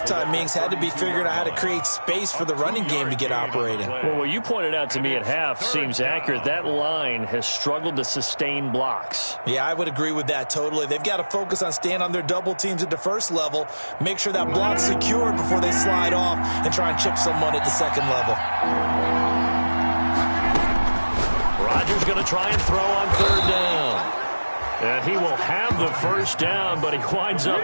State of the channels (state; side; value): inverted; both; correlation -1.00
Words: meetings had to be figuring out how to create space for the running game to get operating. Well, what you pointed out to me at half seems accurate. That line has struggled to sustain blocks. Yeah, I would agree with that totally. They've got to focus on staying on their double teams at the first level, make sure that block's secured before they slide off and try and chip someone at the second level. Rodgers going to try and throw on third down. And he will have the first down, but he winds